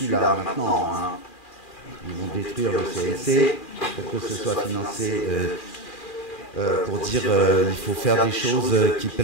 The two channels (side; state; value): right; late; 2.4 ms